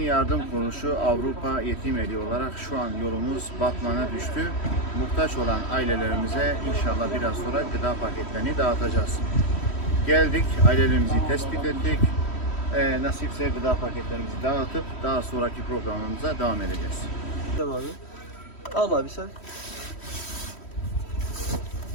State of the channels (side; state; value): right; late; 3.1 ms